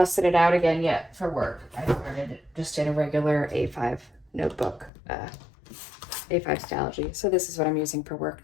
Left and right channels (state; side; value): drops out; right; at 4.9 s